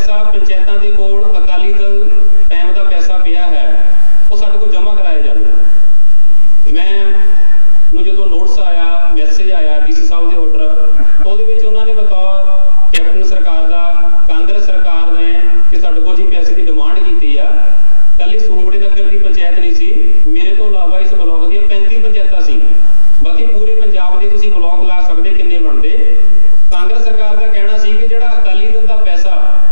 ਪੰਚਾਇਤਾਂ ਦੇ ਕੋਲ ਅਕਾਲੀ ਦਲ ਟਾਈਮ ਦਾ ਪੈਸਾ ਪਿਆ ਹੈ ਉਹ ਸਾਡੇ ਕੋਲ ਜਮ੍ਹਾਂ ਕਰਾਇਆ ਜਾਵੇ। ਮੈਂ ਜਦੋਂ ਨੋਟਿਸ ਆਇਆ, ਮੈਸੇਜ ਆਇਆ ਡੀਸੀ ਸਾਹਿਬ ਦੇ ਆਰਡਰ, ਉਹਦੇ ਵਿੱਚ ਉਹਨਾਂ ਨੇ ਬਤੌਰ ਕੈਪਟਨ ਸਰਕਾਰ ਦਾ, ਕਾਂਗਰਸ ਸਰਕਾਰ ਨੇ ਕਿ ਸਾਡੇ ਕੋਲ ਜੀ ਪੈਸੇ ਦੀ ਡਿਮਾਂਡ ਕੀਤੀ ਆ। ਕੱਲੀ ਸੂੰਬੜੇ ਨਗਰ ਦੀ ਪੰਚਾਇਤ ਨਹੀਂ ਸੀ, ਮੇਰੇ ਤੋਂ ਇਲਾਵਾ ਇਸ ਬਲਾਕ ਦੀਆਂ 35 ਪੰਚਾਇਤਾਂ ਸੀ। ਬਾਕੀ ਪੂਰੇ ਪੰਜਾਬ ਦੇ ਤੁਸੀਂ ਬਲਾਕ ਲਾ ਸਕਦੇ ਕਿੰਨੇ ਬਣਦੇ। ਕਾਂਗਰਸ ਸਰਕਾਰ ਦਾ ਕਹਿਣਾ ਸੀ ਕਿ ਜਿਹੜਾ ਅਕਾਲੀ ਦਲ ਦਾ ਪੈਸਾ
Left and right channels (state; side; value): inverted; both; correlation -1.00